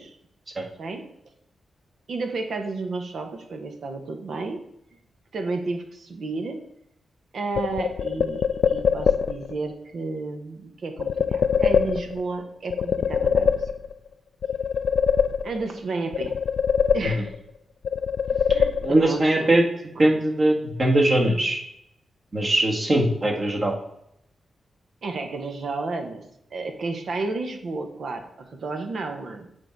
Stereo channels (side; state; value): both; normal; correlation 0.84